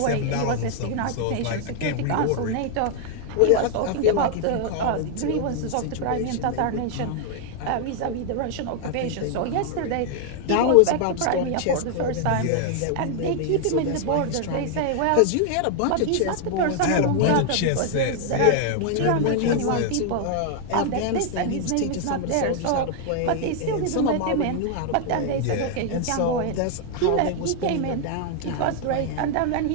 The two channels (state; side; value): different; both; correlation 0.00